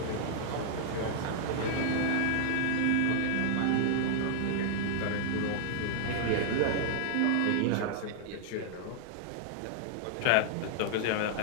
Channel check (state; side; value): different; both; correlation -0.01